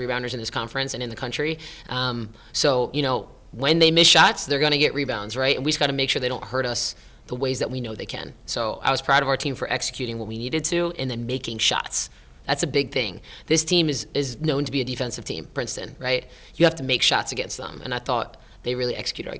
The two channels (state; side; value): identical; both; correlation 1.00